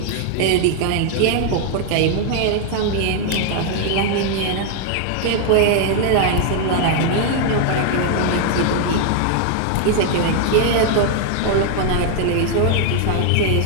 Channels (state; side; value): different; both; correlation 0.00